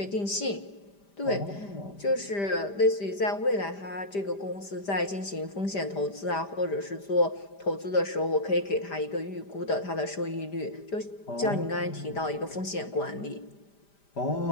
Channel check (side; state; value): right; late; 5.0 ms